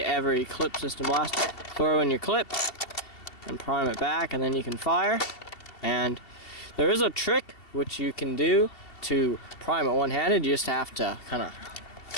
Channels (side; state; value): right; late; 2.7 ms